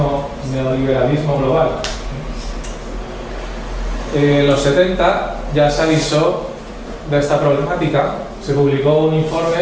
global. En los 70 ya se avisó de esta problemática, se publicó un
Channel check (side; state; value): both; identical; correlation 1.00